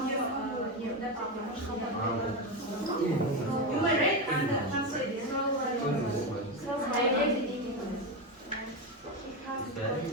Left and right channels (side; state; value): both; normal; correlation 0.14